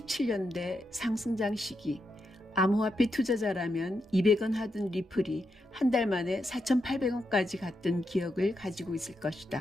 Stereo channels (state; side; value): normal; both; correlation 0.84